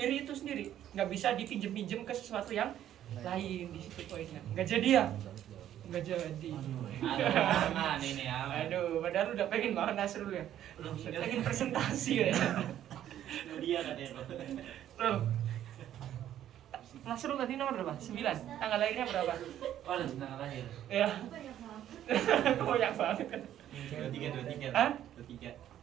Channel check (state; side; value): quieter; left; 11.4 dB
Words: itu sendiri. Nggak bisa dipinjem-pinjem ke sesuatu yang lain. Di situ poinnya. Nggak jadi ya? Nggak jadi. Aman ini ya. Aduh, padahal udah pengen banget Nasrul ya. Pengen presentasi ya. Dia katanya. Loh. Nasrul tadi nomor berapa? 9. Tanggal lahirnya berapa? Oh, tanggal lahir. Ya. Banyak banget kan. 23. Hah? 23.